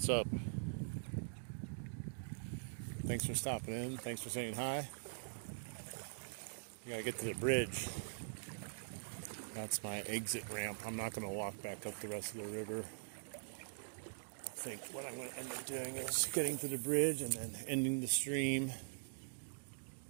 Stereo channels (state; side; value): silent; left; digital silence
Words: up? Thanks for stopping in. Thanks for saying hi. We gotta get to the bridge. That's my exit ramp. I'm not gonna walk back up the rest of the river. I think what I'm gonna end up doing is getting to the bridge and then ending the stream